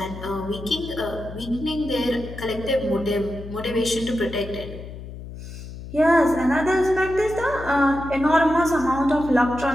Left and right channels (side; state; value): left; noise; hum, 12 dB below the sound